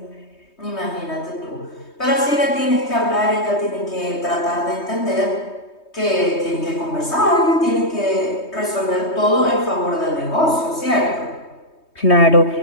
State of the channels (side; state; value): right; late; 3.2 ms